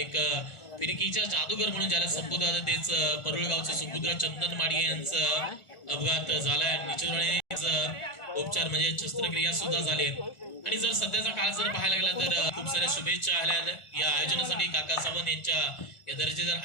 फिरकीच्या जादूगर म्हणून ज्याला संबोधतात तेच परुळगावचे सुपुत्र चंदन माडिये यांचा अपघात झालाय आणि निश्चितपणे उपचार म्हणजे शस्त्रक्रिया सुद्धा झाली आणि जर सध्याचा काळ जर पाहायला गेला तर खूप साऱ्या शुभेच्छा आल्या या आयोजनासाठी. काका सावंत यांच्या या दर्जेदार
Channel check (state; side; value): late; right; 1.4 ms